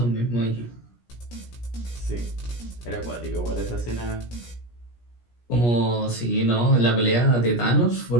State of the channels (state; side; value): late; right; 17 ms